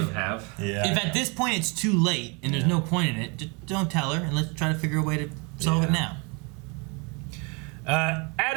them have. Yeah. If at this point it's too late and there's no point in it, just don't tell her, and let's try to figure a way to solve it now.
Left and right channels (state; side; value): quieter; left; 31.4 dB